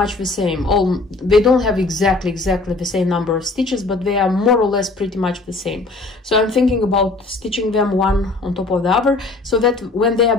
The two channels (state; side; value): quieter; right; 3.4 dB